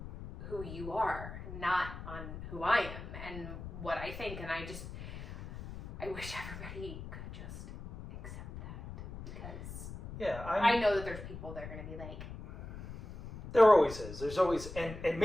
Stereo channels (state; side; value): noise; left; rumble, 11 dB below the sound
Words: who you are, not on who I am and what I think. And I wish everybody could just accept that, because I know that there's people that are going to be like, there always is. There's always, and